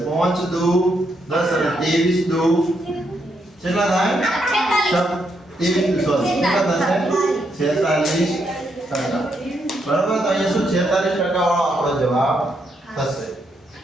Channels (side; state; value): both; normal; correlation 0.78